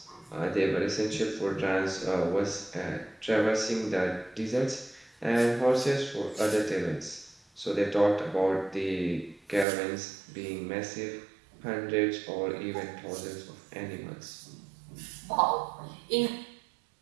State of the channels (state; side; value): drops out; left; at 9.7 s